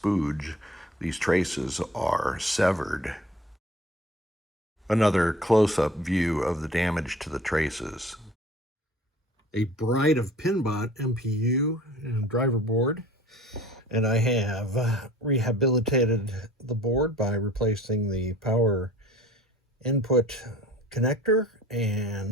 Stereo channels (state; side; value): normal; both; correlation 0.47